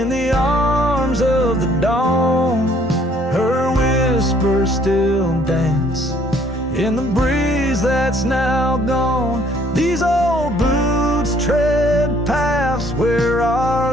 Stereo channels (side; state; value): both; normal; correlation 0.62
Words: the arms of the dawn, her whispers still dance in the breeze that's now gone. These old boots tread paths where